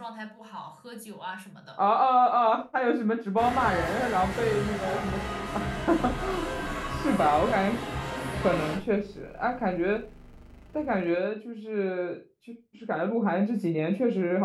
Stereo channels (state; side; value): identical; both; correlation 1.00